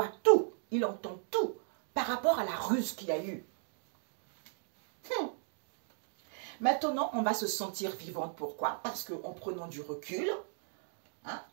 tout, il entend tout par rapport à la ruse qu'il y a eu. Maintenant, on va se sentir vivante. Pourquoi? Parce qu'en prenant du recul,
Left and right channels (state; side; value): silent; left; digital silence